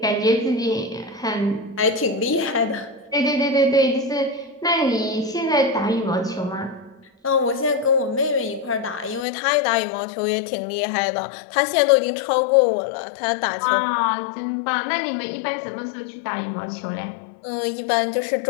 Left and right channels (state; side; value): drops out; right; at 9.2 s